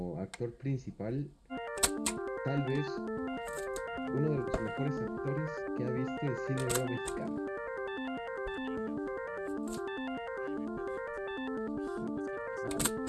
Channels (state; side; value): identical; both; correlation 1.00